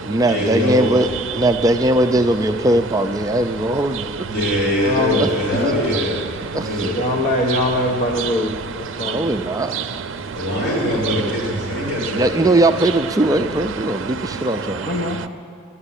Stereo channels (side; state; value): both; normal; correlation 0.50